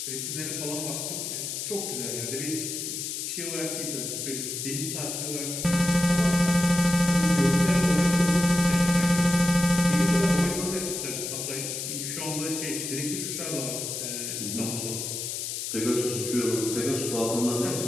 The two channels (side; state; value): left; noise; hiss, 4 dB below the sound